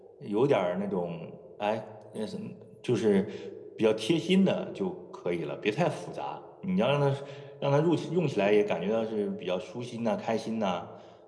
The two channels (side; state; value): both; identical; correlation 1.00